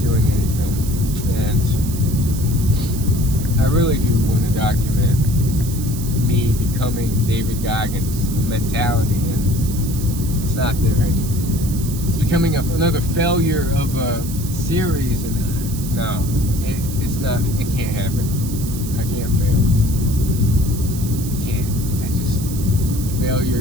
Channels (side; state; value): right; noise; hiss, 12 dB below the sound